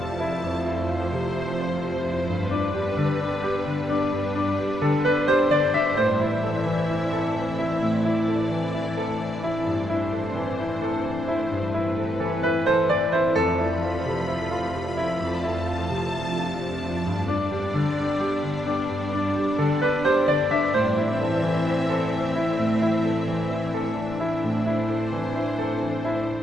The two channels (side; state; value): right; noise; rumble, 17 dB below the sound